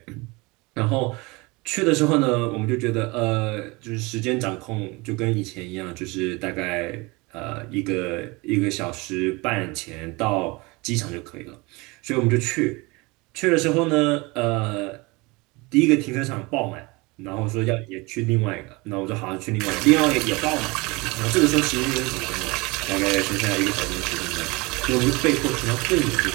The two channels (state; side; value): quieter; left; 25.2 dB